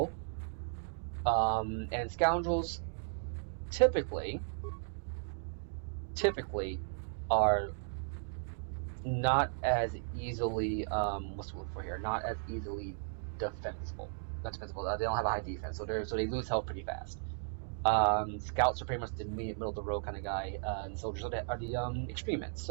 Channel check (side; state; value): left; silent; digital silence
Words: And scoundrels typically are not as easily what's the word for here? Not as easily defensible. Not defensible. They don't have a high defense, so they lose health pretty fast. Scouts are pretty much the middle of the road kind of guy, and soldiers are the extremists.